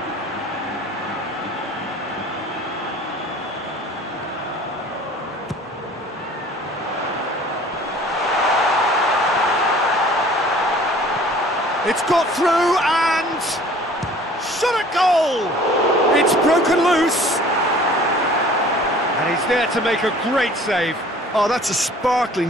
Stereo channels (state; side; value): normal; both; correlation 0.49